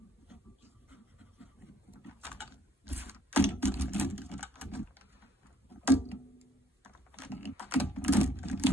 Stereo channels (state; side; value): normal; both; correlation 0.64